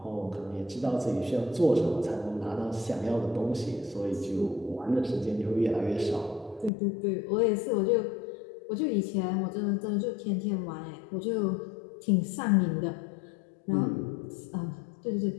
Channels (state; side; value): drops out; right; at 6.7 s